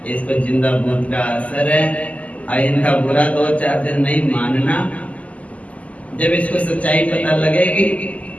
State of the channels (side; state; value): right; late; 0.069 ms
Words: इसको जिंदा भूत का असर है। और इनका बुरा 2-4 दिन नहीं मानना, जब इसको सच्चाई पता लगेगी